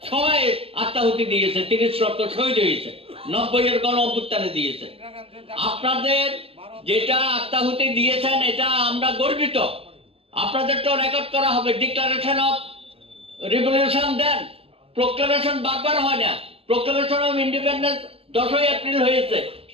সবাই আত্মাহুতি দিয়েছে, 30 লক্ষ শহীদ হয়েছে, 90-এর গণ অভ্যুত্থানে দিয়েছে। আপনাদের যেটা আত্মাহুতি দিয়েছেন এটা আমরা গর্বিত। আপনাদের তো রেকর্ড করা হবে, declaration of revolution then, proclamation বারবার হয় না, প্রোক্লামেশন অফ ইন্ডিপেন্ডেন্স 10ই এপ্রিল হয়েছে,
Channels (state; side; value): late; left; 0.28 ms